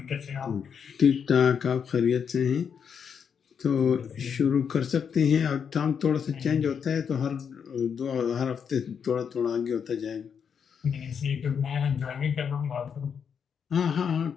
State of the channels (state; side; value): quieter; right; 7.1 dB